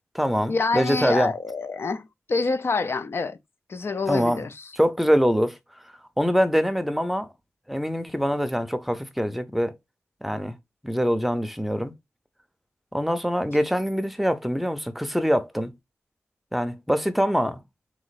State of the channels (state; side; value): normal; both; correlation 0.94